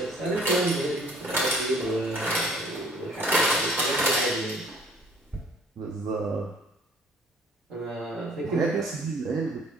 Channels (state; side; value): normal; both; correlation 0.56